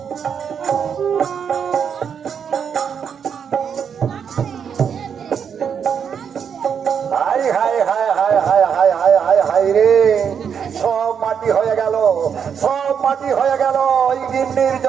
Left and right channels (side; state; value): left; quieter; 7.4 dB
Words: High high high high high high high high high রে, সব মাটি হয়ে গেল, সব মাটি হয়ে গেল। ওই গিন্নির